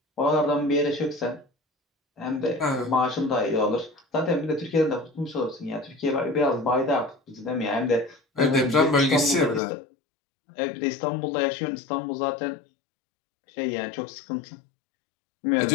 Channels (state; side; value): drops out; right; at 9.6 s